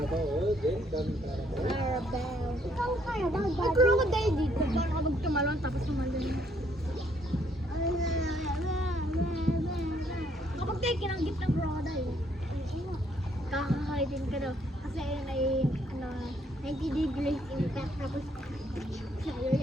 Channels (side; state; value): both; normal; correlation 0.69